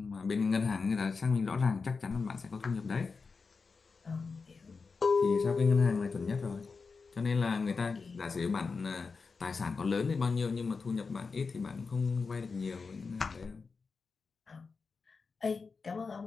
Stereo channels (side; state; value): right; quieter; 4.7 dB